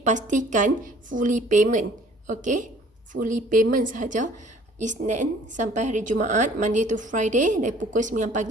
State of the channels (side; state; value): both; normal; correlation 0.54